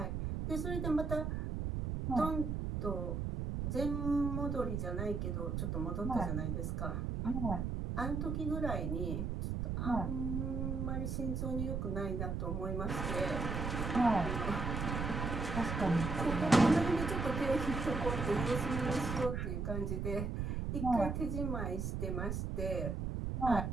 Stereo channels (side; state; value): right; noise; rumble, 1 dB below the sound